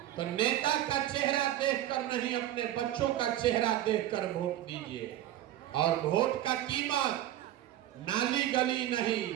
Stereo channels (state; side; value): quieter; left; 13.1 dB